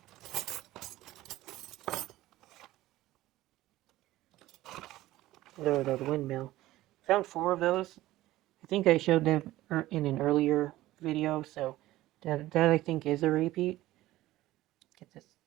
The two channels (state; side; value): quieter; left; 16.3 dB